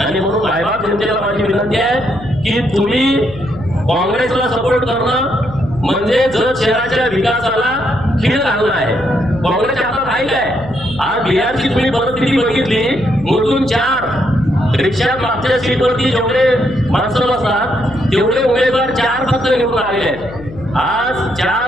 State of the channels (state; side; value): noise; left; hum, 15 dB below the sound